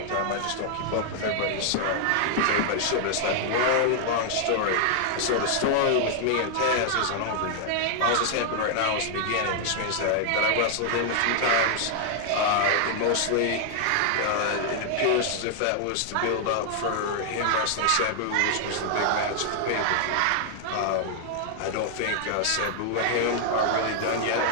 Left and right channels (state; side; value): different; both; correlation -0.01